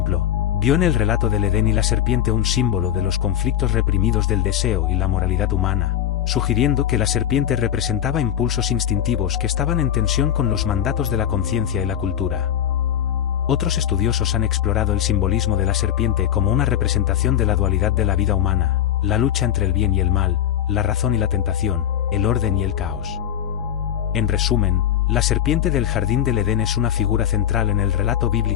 vio en el relato del Edén y la serpiente un símbolo de los conflictos reprimidos del deseo y la moralidad humana, sugiriendo que la serpiente representaba impulsos instintivos que estaban en tensión con los mandatos de la conciencia y la cultura. Otros estudiosos han explorado el simbolismo de la serpiente como una representación de la dualidad de la vida humana, la lucha entre el bien y el mal, la razón y la tentación, el orden y el caos. En resumen, la serpiente del jardín del Edén es una figura central en el relato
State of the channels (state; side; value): quieter; right; 10.5 dB